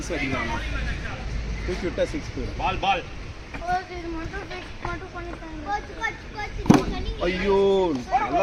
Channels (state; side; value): identical; both; correlation 1.00